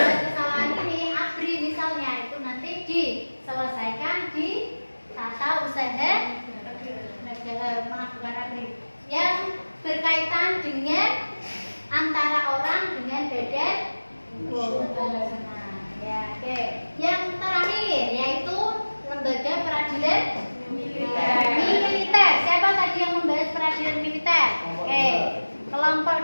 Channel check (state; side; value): inverted; both; correlation -1.00